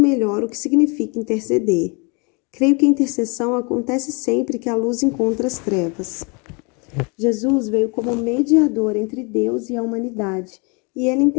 o que significa interceder. Creio que a intercessão acontece sempre que a luz encontra as trevas. Jesus veio como mediador entre Deus e a humanidade, e ele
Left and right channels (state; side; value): quieter; right; 31.5 dB